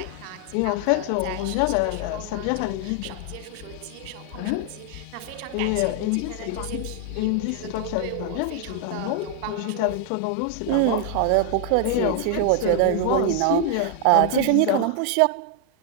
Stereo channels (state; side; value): different; both; correlation 0.00